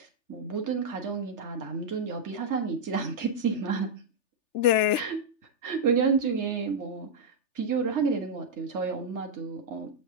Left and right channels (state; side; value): late; right; 3.4 ms